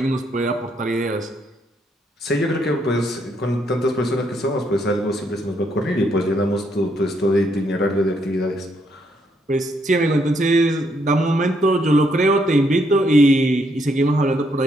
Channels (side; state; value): both; normal; correlation 0.74